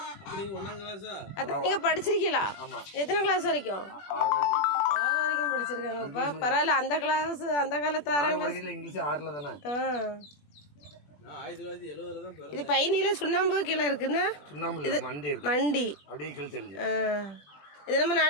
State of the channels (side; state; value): right; late; 21 ms